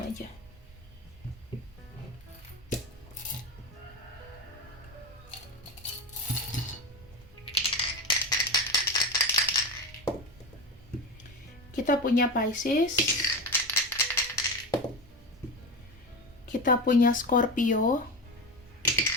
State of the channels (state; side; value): normal; both; correlation 0.22